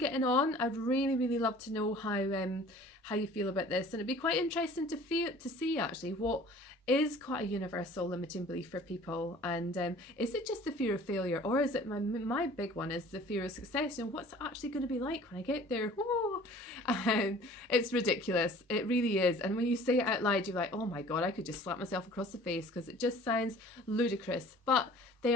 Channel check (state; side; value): normal; both; correlation 0.48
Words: on. I'd really love to know how you feel about this, and it'd be quite interesting to see actually what is quite a universal limiting belief for people, and is it just the fear of failure, or is it my big one is the fear of success, and what's it actually going to be like when I get there? It's ridiculous, it really is, and when you say it out loud you're like, oh my god, I could just slap myself across the face because it just sounds ludicrous, but they